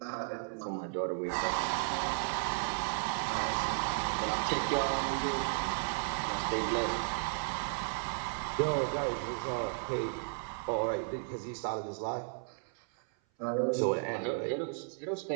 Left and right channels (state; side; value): silent; left; 55 dB below the other